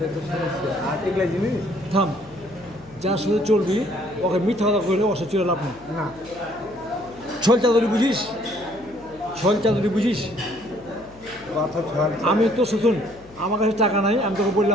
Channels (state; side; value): noise; left; hum, 23 dB below the sound